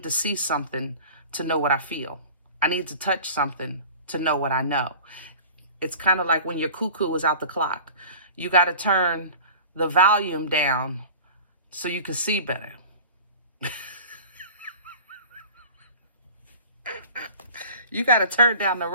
to see something to know what I feel. I need to touch something to know what I know. It's kind of like when your cuckoo is out the clock. You got to turn the volume down so you can see better. You got to turn down the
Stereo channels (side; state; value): both; inverted; correlation -0.40